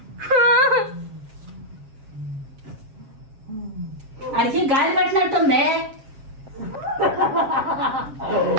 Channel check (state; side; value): late; left; 7.4 ms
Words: అడిగి గాలి పట్టినట్టుంది.